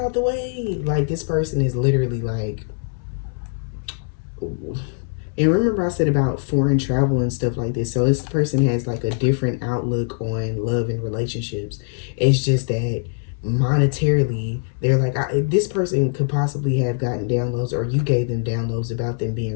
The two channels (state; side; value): silent; right; 64 dB below the other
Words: out the way. Like this person is literally like, and remember I said about foreign travel and stuff like this. So this person has like a different outlook on love and relationships. It's just that monetarily, they're like, this person could possibly have gotten downloads, or you gave them downloads about them